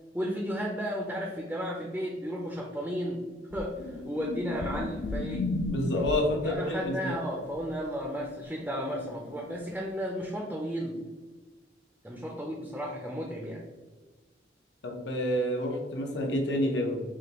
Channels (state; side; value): normal; both; correlation 0.57